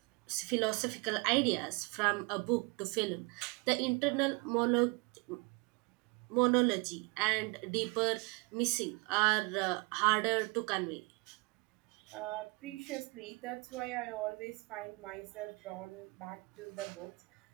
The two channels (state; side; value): quieter; left; 28.8 dB